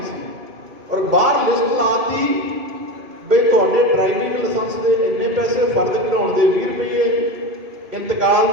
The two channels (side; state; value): left; late; 2.6 ms